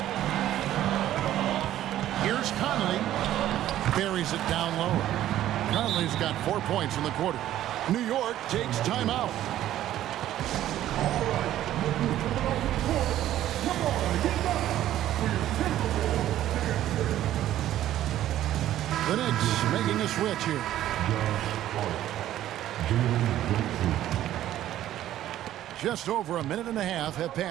Here's Conley. Buries it down low. Conley's got 4 points in the quarter. New York takes timeout. The Knicks making a switch here. Just over a minute and a half have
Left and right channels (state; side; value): quieter; left; 12.8 dB